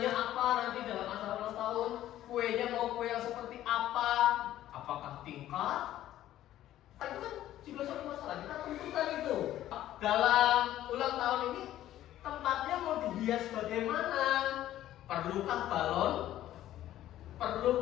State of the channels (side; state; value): right; quieter; 13.2 dB